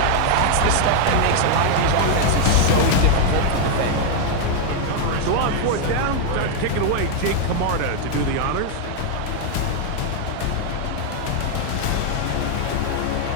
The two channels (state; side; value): different; both; correlation 0.00